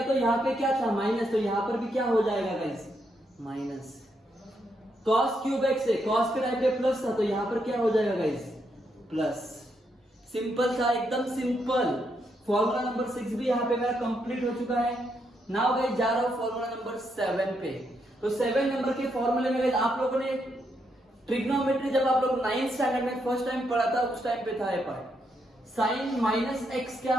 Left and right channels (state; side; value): normal; both; correlation 0.79